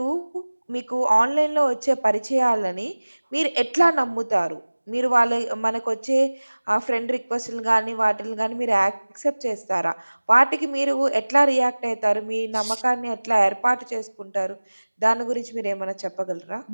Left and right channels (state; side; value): inverted; both; correlation -1.00